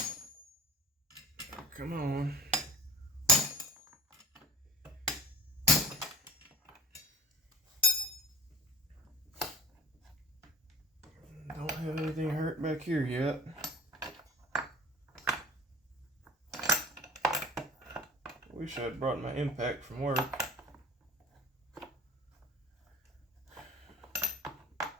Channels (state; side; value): normal; both; correlation 0.40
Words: Come on. Don't have anything hurt back here yet. Wish I'd brought my impact from work.